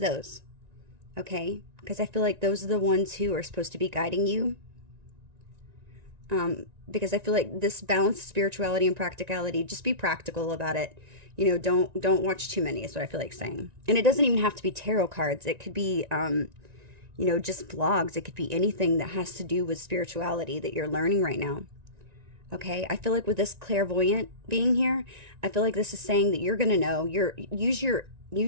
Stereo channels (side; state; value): left; late; 1.9 ms